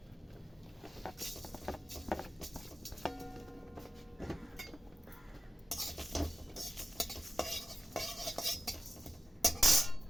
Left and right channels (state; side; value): normal; both; correlation 0.93